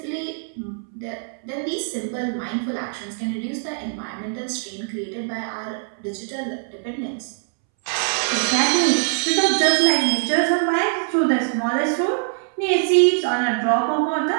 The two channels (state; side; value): silent; left; 64 dB below the other